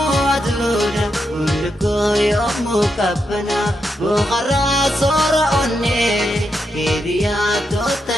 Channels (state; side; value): normal; both; correlation 0.83